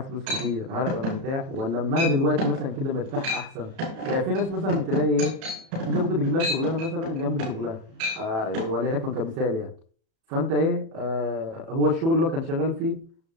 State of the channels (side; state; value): left; late; 37 ms